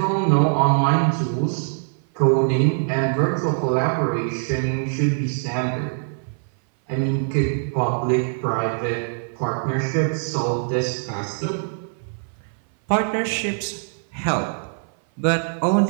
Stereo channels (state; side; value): silent; left; 60 dB below the other